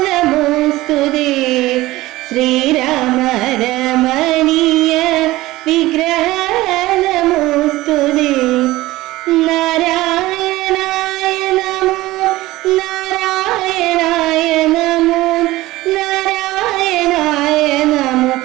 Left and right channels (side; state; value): left; quieter; 18.0 dB